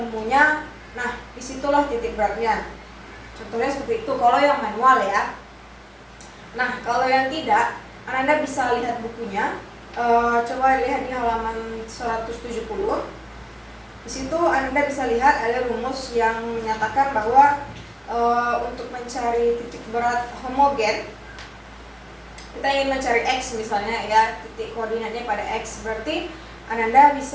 Nah disitulah titik beratnya. Contohnya seperti itu kalau yang manual ya. Nah kalau yang tidak, Anda bisa lihat bukunya. Coba lihat di halaman 170. Di situ Anda bisa lihat ada rumus yang menyatakan bahwa untuk mencari titik berat homogen, kita ingin mencari X misalnya ya, titik koordinatnya pada X, berarti Anda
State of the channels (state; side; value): identical; both; correlation 1.00